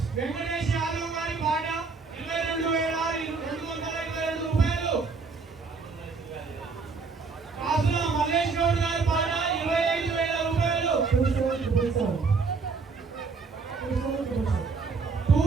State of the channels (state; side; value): quieter; left; 4.6 dB